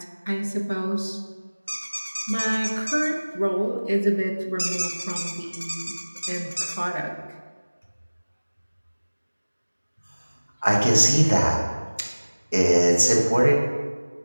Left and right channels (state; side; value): inverted; both; correlation -1.00